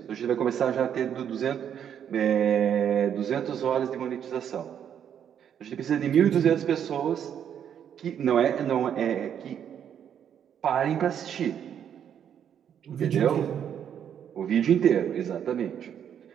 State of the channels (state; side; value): quieter; left; 8.9 dB